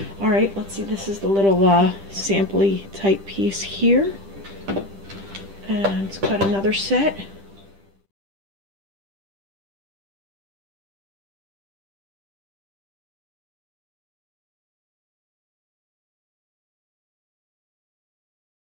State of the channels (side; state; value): left; late; 10 ms